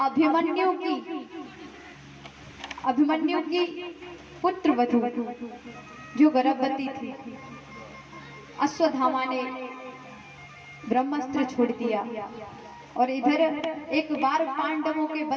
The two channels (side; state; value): both; identical; correlation 1.00